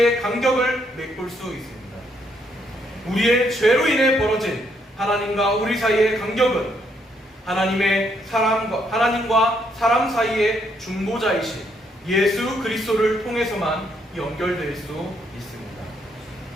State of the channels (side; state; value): both; normal; correlation 0.73